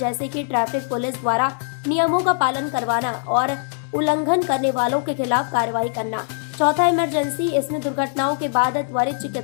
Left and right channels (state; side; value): silent; right; 64 dB below the other